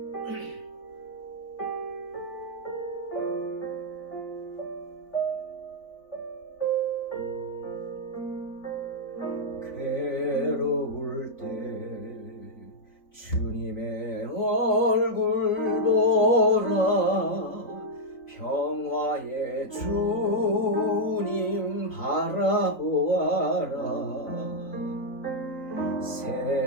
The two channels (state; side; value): late; right; 4.0 ms